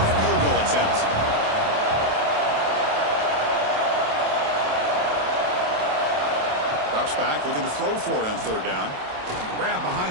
field goal attempt. Drops back, looking to throw for it on third down. Grab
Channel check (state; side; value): late; left; 27 ms